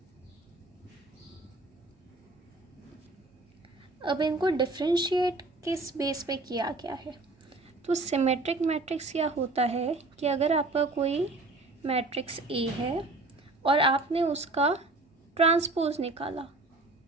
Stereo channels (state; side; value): quieter; left; 3.1 dB